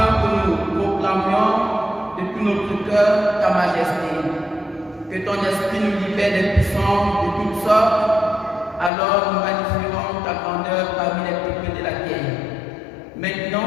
que nous proclamions de tout notre cœur ta majesté. Que ton esprit nous libère des puissances de toutes sortes, alors nous magnifierons ta grandeur parmi les peuples de la terre. Maintenant,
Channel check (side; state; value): right; drops out; at 8.9 s